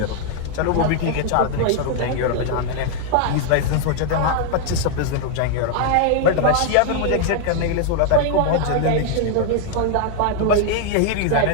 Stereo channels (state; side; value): different; both; correlation 0.00